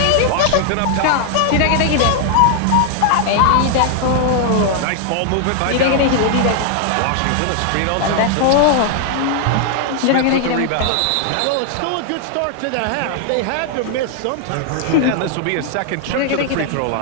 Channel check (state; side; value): different; both; correlation 0.00